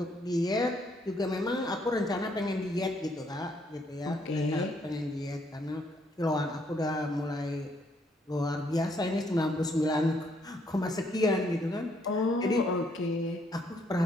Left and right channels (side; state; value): both; normal; correlation 0.70